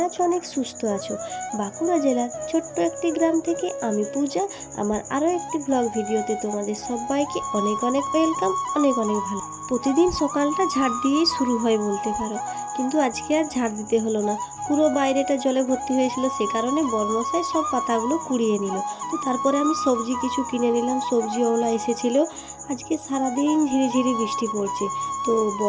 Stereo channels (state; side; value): identical; both; correlation 1.00